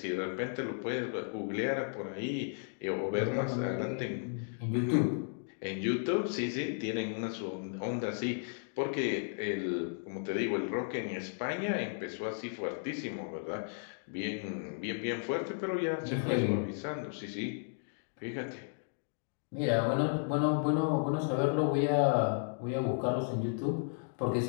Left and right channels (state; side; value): silent; right; digital silence